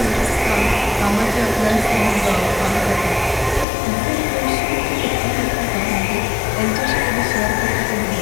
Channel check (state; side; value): drops out; right; at 3.7 s